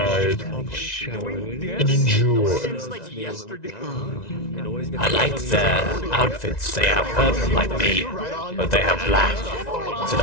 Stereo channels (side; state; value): right; late; 1.9 ms